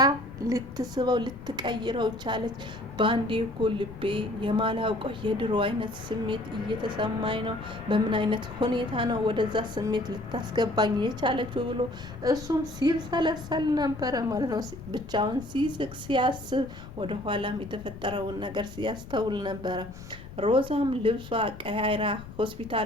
ልትስበው ልትቀይረው ቻለች። በአንዴ እኮ ልቤ የማላውቀው የድሮ አይነት ስሜት እየተሰማኝ ነው፣ በምን አይነት ሁኔታ ነው ወደዛ ስሜት ልታስገባኝ የቻለችው ብሎ እሱም ሲብሰለሰል ነበረ ማለት ነው። ብቻውን ሲስቅ ሲያስብ ወደ ኋላም የተፈጠረውን ነገር ሲያስተውል ነበረ። ሮዛም ልብሷ ቀያይራ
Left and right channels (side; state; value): left; noise; rumble, 15 dB below the sound